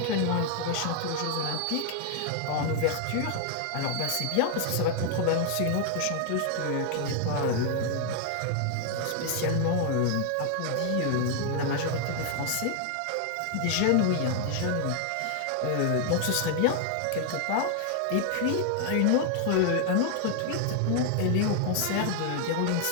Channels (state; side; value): different; both; correlation 0.00